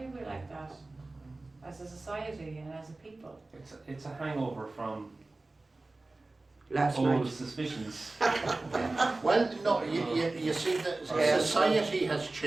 we like that as a society and as a people? it's a hangover from Last old night. suspicions. Well, no, you see, the Yeah. society has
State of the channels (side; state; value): left; quieter; 3.1 dB